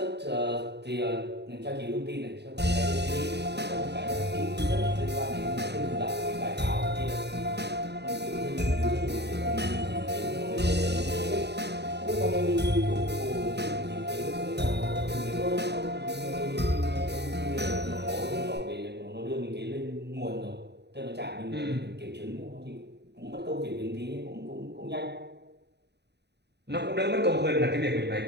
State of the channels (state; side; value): late; left; 0.49 ms